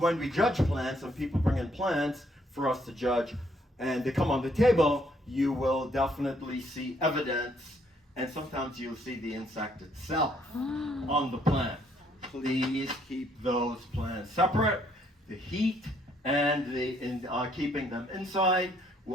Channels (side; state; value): both; normal; correlation 0.68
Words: we judge plants and people bring in plants for us to judge and they come on the table, you will definitely see evidence, and sometimes you'll see the insect itself on the plant. Please keep those plants separate. The heat and keeping them inside